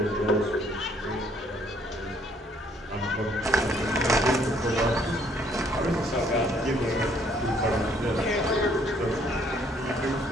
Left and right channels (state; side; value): normal; both; correlation 0.64